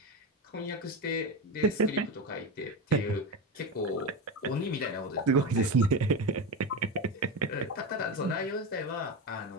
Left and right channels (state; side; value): normal; both; correlation 0.18